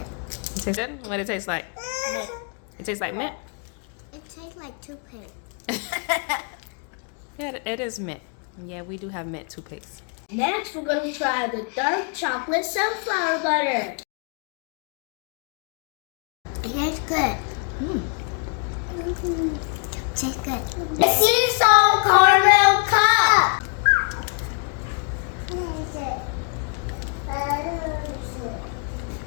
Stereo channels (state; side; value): quieter; right; 39.4 dB